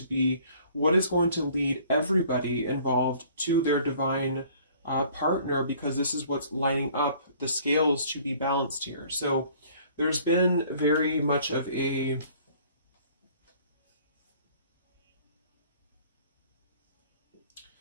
be what is going to lead everybody involved to their divine partner, because this is what's lining up the scales to be balanced here. So there's been very much of a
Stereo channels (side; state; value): both; inverted; correlation -0.55